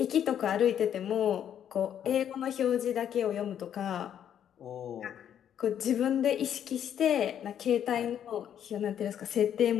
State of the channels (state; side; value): quieter; right; 9.6 dB